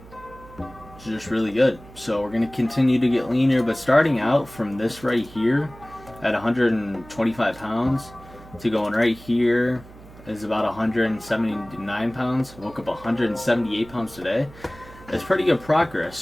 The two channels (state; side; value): noise; right; hum, 20 dB below the sound